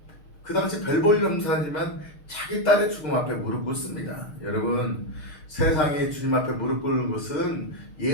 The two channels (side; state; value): right; late; 6.6 ms